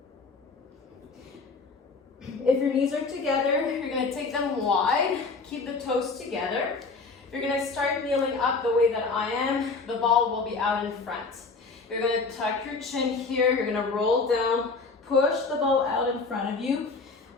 If your knees are together, you're going to take them wide. Keep the toes together. You're going to start kneeling up the way that I am. The ball will be out in front. You're going to tuck your chin here. You're going to roll down. Push the ball out in front of you.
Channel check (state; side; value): quieter; right; 4.2 dB